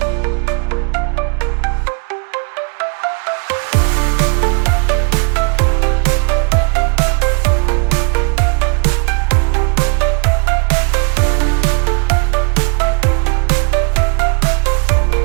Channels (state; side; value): quieter; left; 36.8 dB